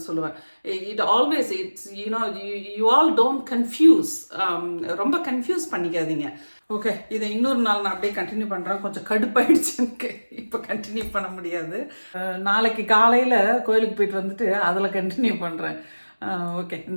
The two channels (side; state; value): both; inverted; correlation -1.00